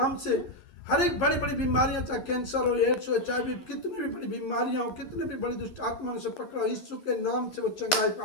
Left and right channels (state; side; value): late; right; 11 ms